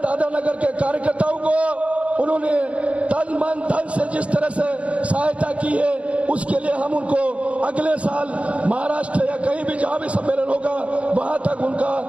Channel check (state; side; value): late; left; 0.063 ms